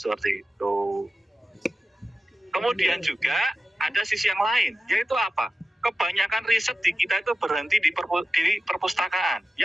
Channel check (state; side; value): normal; both; correlation 0.93